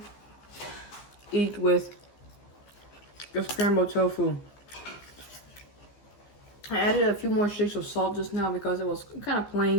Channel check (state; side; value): late; right; 15 ms